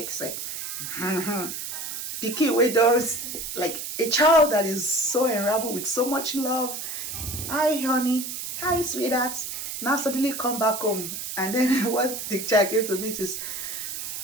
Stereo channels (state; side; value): noise; right; hiss, 6 dB below the sound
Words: it. Picky widows, like a child that is so enraptured with so much love. Hi honey, hi sweetheart. Now suddenly come back home, and then what the child gives to me is,